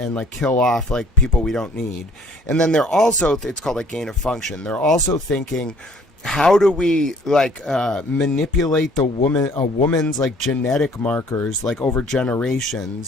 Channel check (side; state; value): both; normal; correlation 0.57